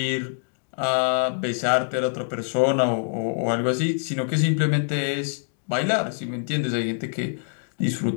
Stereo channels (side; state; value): right; silent; 62 dB below the other